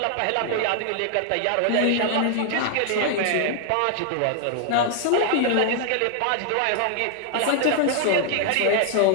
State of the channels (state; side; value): different; both; correlation 0.00